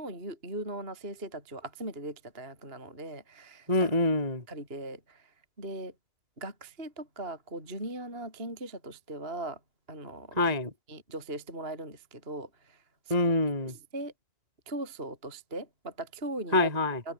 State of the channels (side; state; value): left; late; 2.8 ms